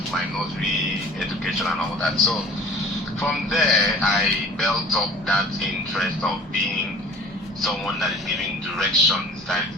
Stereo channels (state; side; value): normal; both; correlation 0.45